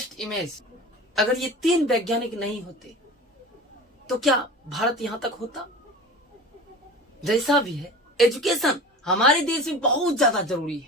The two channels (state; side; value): normal; both; correlation 0.36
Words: इमेज, अगर ये 3 वैज्ञानिक नहीं होते तो क्या भारत यहां तक होता? जैसा भी है, एजुकेशन हमारे देश में बहुत ज्यादा जरूरी है,